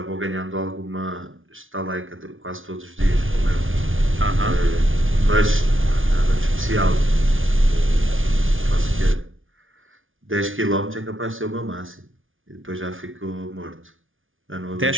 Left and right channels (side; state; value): left; late; 0.58 ms